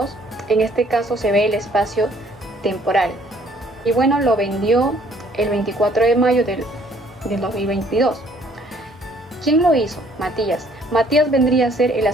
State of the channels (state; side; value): normal; both; correlation 0.61